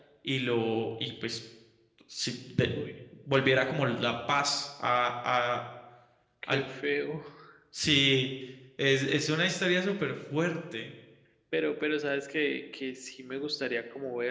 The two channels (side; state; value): both; identical; correlation 1.00